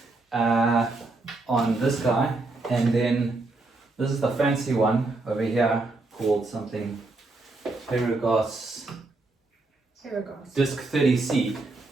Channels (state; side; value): quieter; left; 3.3 dB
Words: on this guy, and then this is the fancy one over here called something Paragas Disc 30C,